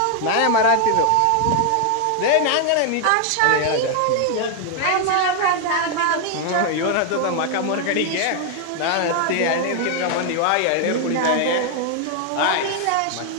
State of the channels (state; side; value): different; both; correlation 0.00